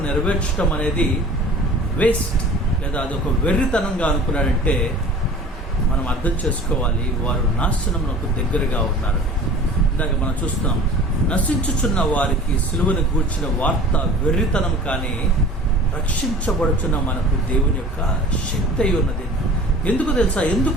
నెరవేర్చడం అనేది వేస్ట్, లేదా అదొక వెర్రితనంగా అనుకున్నాడంటే మనం అర్థం చేసుకోవాలి, వారు నాశనమునకు దగ్గరగా ఉన్నారు. ఇందాక మనం చూస్తున్నాం, నశించుచున్న వారికి సిలువను గూర్చిన వార్త వెర్రితనం, కానీ రక్షించబడుచున్న మనకు దేవుని యొక్క శక్తి అయి ఉన్నది. ఎందుకు తెలుసా?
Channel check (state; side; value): normal; both; correlation 0.43